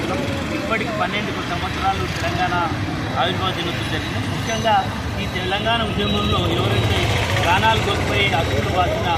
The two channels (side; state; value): both; identical; correlation 1.00